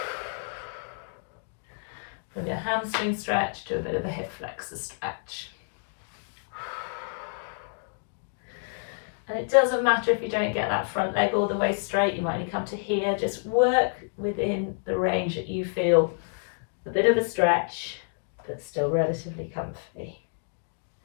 from your hamstring stretch to a bit of a hip flexor stretch. And it doesn't matter if you don't get that front leg all the way straight, you might only come to here. Just work within the range that you feel a bit of a stretch, but still relatively comfy.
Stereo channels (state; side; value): silent; right; digital silence